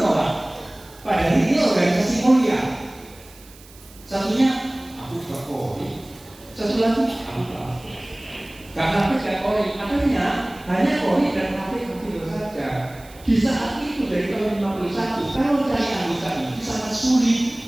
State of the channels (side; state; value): right; noise; hiss, 23 dB below the sound